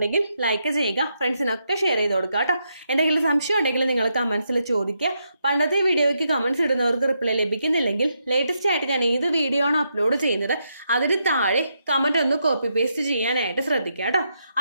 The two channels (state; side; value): inverted; both; correlation -0.81